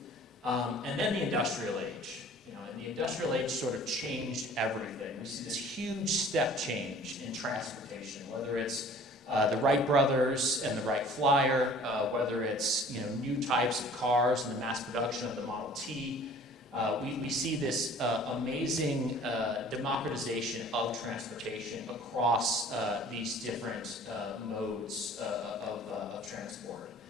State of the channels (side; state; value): both; normal; correlation 0.50